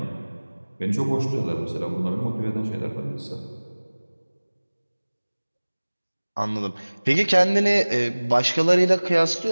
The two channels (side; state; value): both; inverted; correlation -1.00